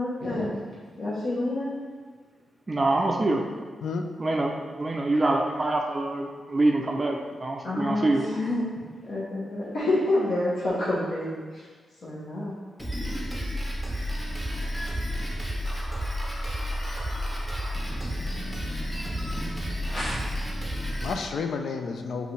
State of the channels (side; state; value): both; normal; correlation 0.89